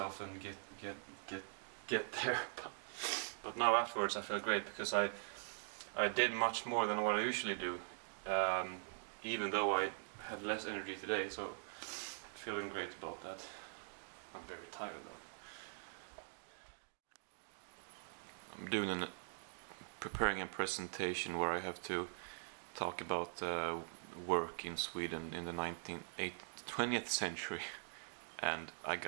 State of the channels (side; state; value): left; silent; digital silence